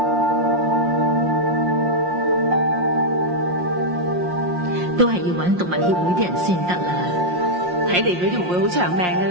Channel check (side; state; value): left; late; 5.6 ms